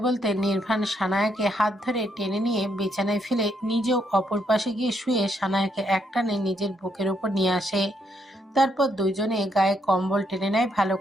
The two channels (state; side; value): normal; both; correlation 0.76